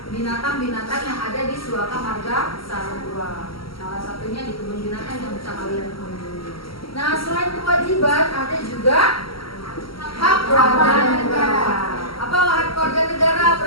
binatang-binatang yang ada di suaka marga satwa. Salah satunya di kebun binatang yang bisa kalian kunjungi. Nah, selain kewajiban ada juga hak warga negara. Apa hak warga negara?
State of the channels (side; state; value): right; late; 0.75 ms